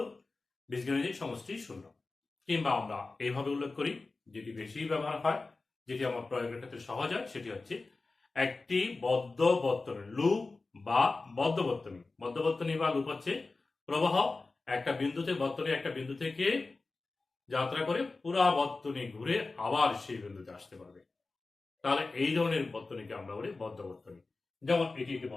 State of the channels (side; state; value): right; quieter; 3.6 dB